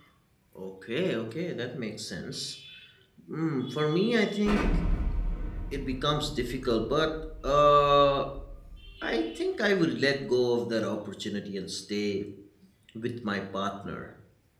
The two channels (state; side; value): identical; both; correlation 1.00